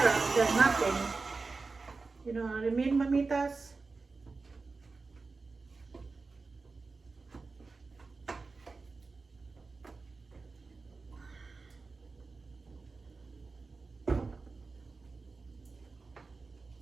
than nothing. You know what I mean, mamitas?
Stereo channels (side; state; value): left; quieter; 4.0 dB